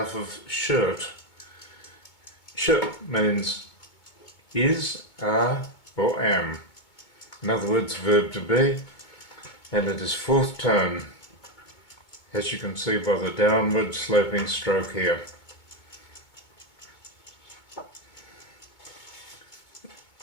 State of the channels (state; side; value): late; right; 2.2 ms